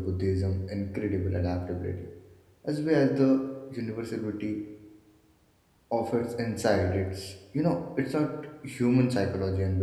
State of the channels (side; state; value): both; identical; correlation 1.00